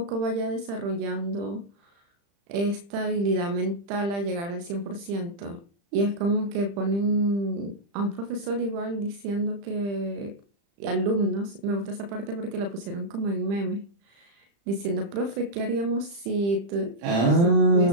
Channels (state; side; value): late; left; 35 ms